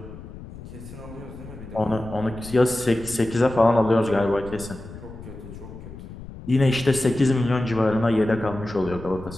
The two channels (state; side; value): noise; left; rumble, 14 dB below the sound